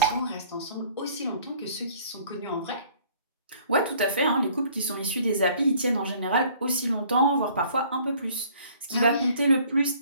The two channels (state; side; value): inverted; both; correlation -0.56